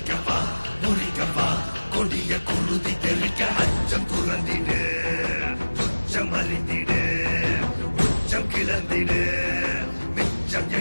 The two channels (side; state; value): both; inverted; correlation -1.00